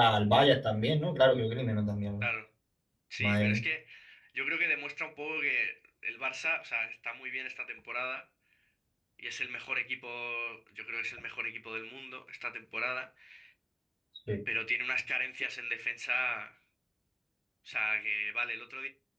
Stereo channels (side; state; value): both; identical; correlation 1.00